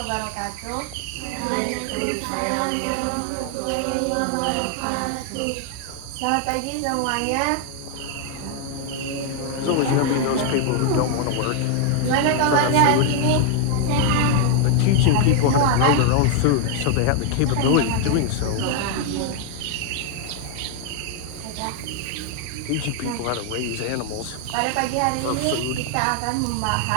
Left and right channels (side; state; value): both; different; correlation 0.00